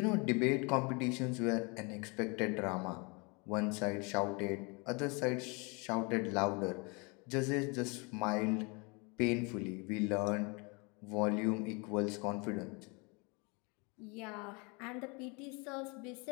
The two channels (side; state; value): right; quieter; 30.6 dB